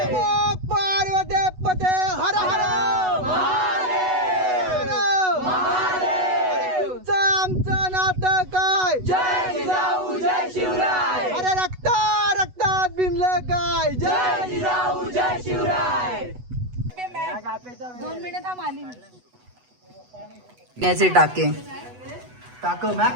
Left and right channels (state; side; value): late; left; 8.1 ms